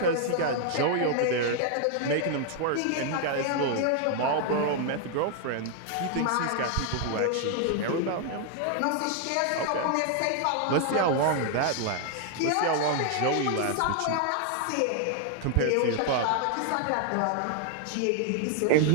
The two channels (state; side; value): different; both; correlation 0.00